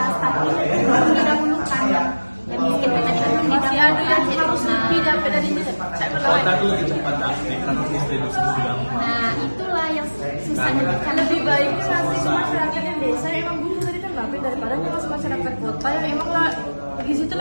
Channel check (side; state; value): both; inverted; correlation -1.00